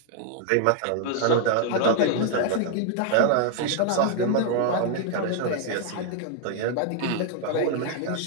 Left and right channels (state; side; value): different; both; correlation 0.00